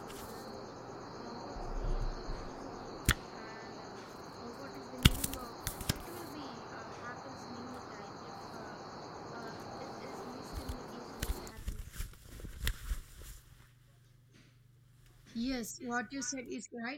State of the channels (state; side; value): identical; both; correlation 1.00